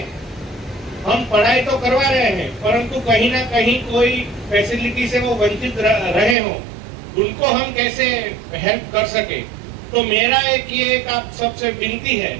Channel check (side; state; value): left; drops out; at 6.4 s